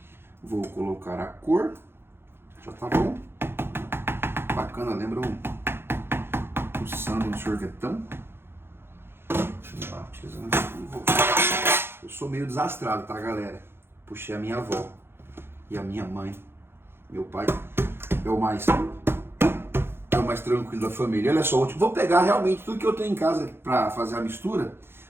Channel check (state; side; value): late; left; 0.11 ms